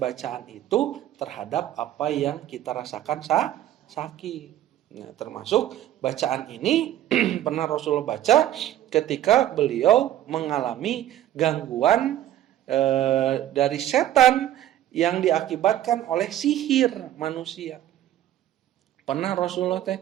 itu terhadap apa yang kita rasakan sakit. Nah, termasuk bacaan ini pernah Rasulullah baca ketika beliau mengalami gangguan dari setan yang diakibatkan oleh sihir manusia. Pernah Rasulullah teh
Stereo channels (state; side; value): quieter; left; 12.6 dB